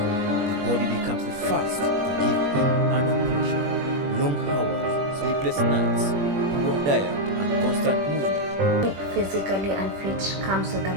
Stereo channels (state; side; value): late; left; 21 ms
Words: The body becomes the first to give in under pressure. Long hours, sleepless nights, poor diet, and constant movement. Physically unfit comes with a